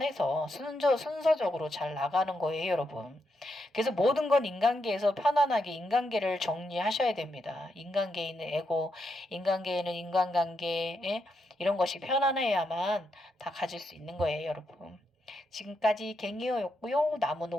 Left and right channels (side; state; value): both; normal; correlation 0.82